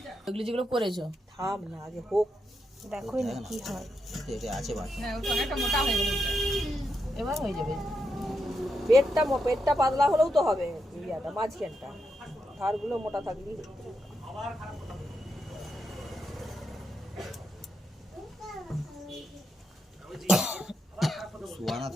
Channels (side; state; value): both; normal; correlation 0.84